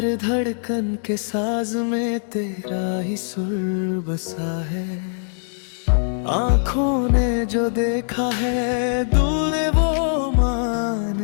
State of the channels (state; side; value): silent; right; digital silence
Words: धड़कन के साज में तेरा ही सुर बसा है। आँखों ने जो देखा है दिल ने वो मान